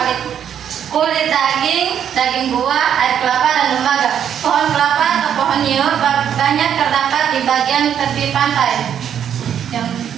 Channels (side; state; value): left; quieter; 9.0 dB